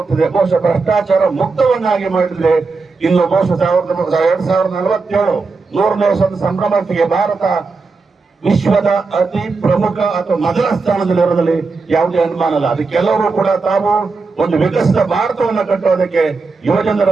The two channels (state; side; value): quieter; left; 4.2 dB